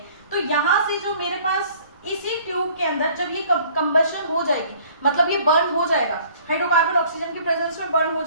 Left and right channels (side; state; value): both; inverted; correlation -0.54